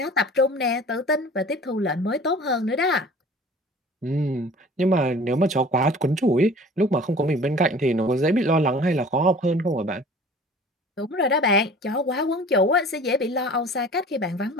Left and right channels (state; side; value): normal; both; correlation 0.45